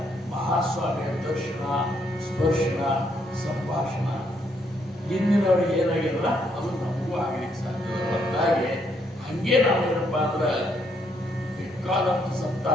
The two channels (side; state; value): both; normal; correlation 0.73